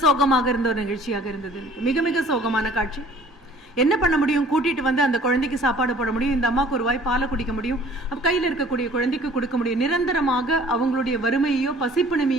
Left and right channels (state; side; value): normal; both; correlation 0.52